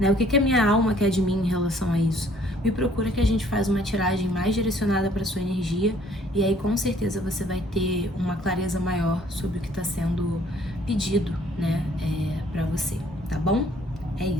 O que a minha alma quer de mim em relação a isso? me procura que a gente faz uma tiragem mais direcionada para sua energia e aí com certeza você vai ter uma clareza maior sobre o que está sendo pedido, né, para você, tá bom? É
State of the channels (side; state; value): both; normal; correlation 0.59